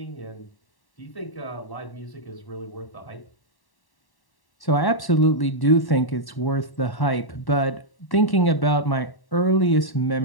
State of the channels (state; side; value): late; right; 1.1 ms